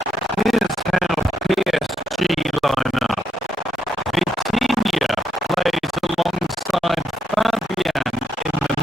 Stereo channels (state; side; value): normal; both; correlation 0.79